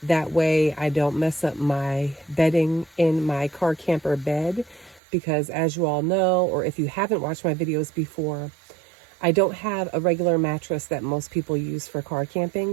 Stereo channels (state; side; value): drops out; left; at 5.0 s